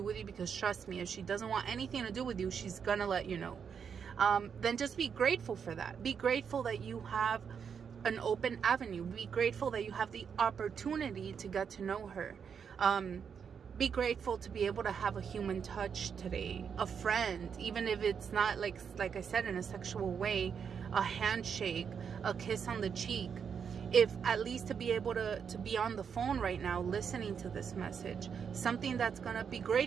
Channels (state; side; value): quieter; left; 6.9 dB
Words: with you, because trust me, if she doesn't want anything to do with you, she's gonna let you know. Then just be grateful for that. Be grateful that you have an open avenue. Be grateful that you have the opportunity to get to know her. Be grateful to be able to have a human touch today, a friend, even if it's not like I said, in a sexual way, a handshake, a kiss on the cheek. If at least to be able to be on the phone right now listening to this message, something that's gonna be